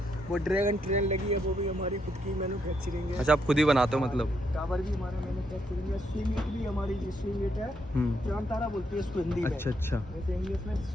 वो ड्रैगन ट्रेन लगी है, वो भी हमारी खुद की मैन्युफैक्चरिंग है। अच्छा, आप खुद ही बनाते हो मतलब? टावर भी हमारा मैन्युफैक्चरिंग है। स्विंग इट भी हमारी, जो स्विंग इट है, चांद तारा बोलती है इसको हिंदी में। अच्छा। वैसे इंग्लिश में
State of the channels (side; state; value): both; normal; correlation 0.77